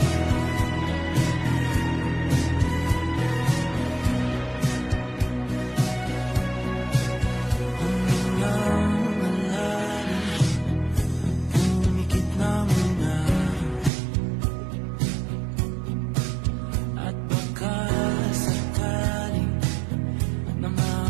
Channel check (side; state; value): left; drops out; at 13.9 s